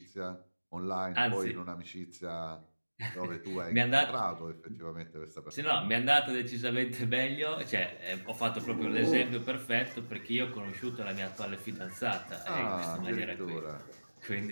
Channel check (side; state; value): both; inverted; correlation -1.00